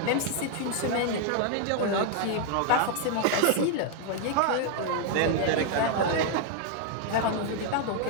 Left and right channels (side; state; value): both; different; correlation 0.00